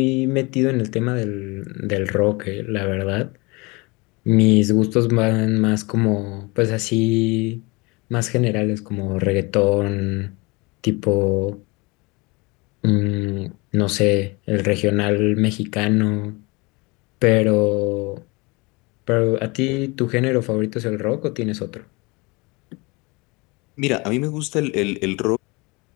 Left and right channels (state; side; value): quieter; right; 26.4 dB